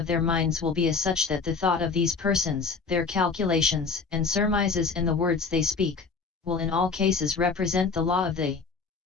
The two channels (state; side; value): quieter; right; 4.8 dB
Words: their minds will be as such that the thought of these persons, their calculations and surmises and the words they speak, will in all cases represent the law of the